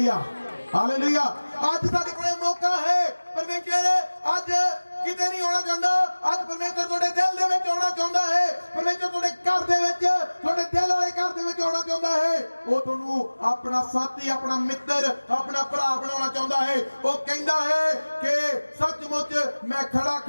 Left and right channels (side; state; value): both; inverted; correlation -1.00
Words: हालेलुया। अज साडे कोल मौका है। परमेश्वर अज किते नहीं होना चाहता, अज परमेश्वर तुहाडे दिल दे विच आउणा चाहुंदा है। परमेश्वर तुहाडे घर दे विच, तुहाडे दिल वाले घर दे विच आउणा चाहुंदा है। वो तुहानू अपना साथी, अपना मित्र, अपना भरा बनाउणा चाहुंदा है। वो कहंदा है कि सचमुच मैं खड़ा